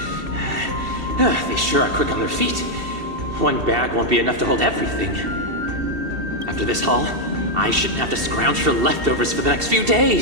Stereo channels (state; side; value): late; left; 2.7 ms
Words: They sure are quick on their feet. One bag won't be enough to hold everything. After this haul, I shouldn't have to scrounge for leftovers for the next few